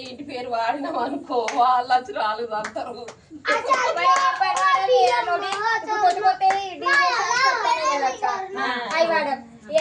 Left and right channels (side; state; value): both; identical; correlation 1.00